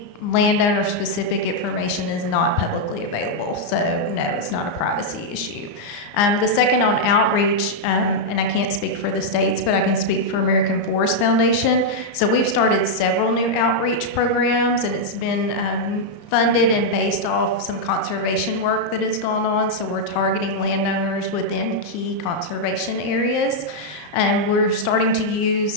landowner specific information is not publicly available. So no, it's not a privacy issue. The second on outreach, and I can't speak for the states, but I can speak for American Forest Foundation. So we've started several new outreach programs, and it's been funded and based off some conservation work that has gone on. So we're targeting landowners within key conservation areas. And we're starting to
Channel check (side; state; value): right; late; 34 ms